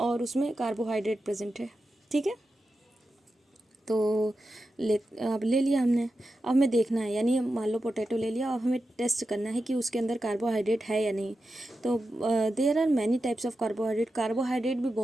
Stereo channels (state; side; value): normal; both; correlation 0.90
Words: उसमें कार्बोहाइड्रेट प्रेजेंट है, ठीक है। तो अब ले लिया हमने। अब हमें देखना है, यानी मान लो पोटैटो ले लिया, अब हमें टेस्ट करना है कि उसके अंदर कार्बोहाइड्रेट है या नहीं। तो there are many types of carbohydrate. Carbohydrate भी